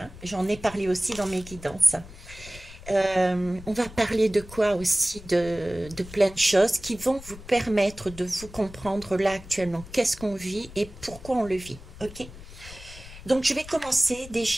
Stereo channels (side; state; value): left; noise; rumble, 16 dB below the sound